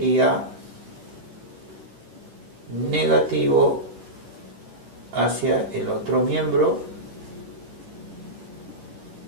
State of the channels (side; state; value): left; late; 10 ms